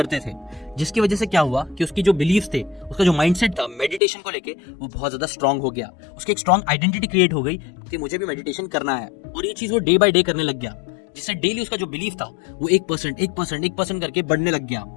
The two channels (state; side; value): drops out; right; at 4.0 s